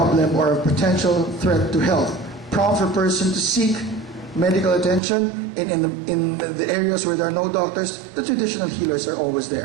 or a potential threat to health. Prompt for a person to seek medical attention. In the areas where there are no doctors, the traditional healers are always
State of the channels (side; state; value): left; drops out; at 5.0 s